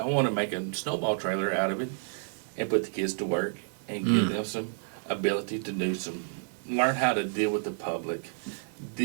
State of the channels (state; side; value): silent; left; digital silence